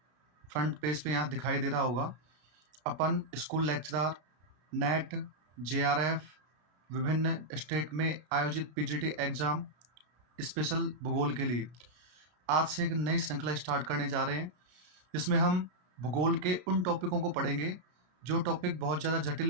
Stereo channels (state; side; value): late; left; 33 ms